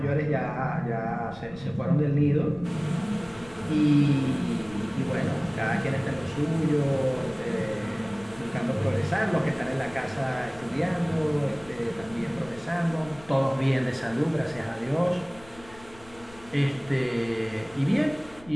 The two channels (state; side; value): noise; left; rumble, 22 dB below the sound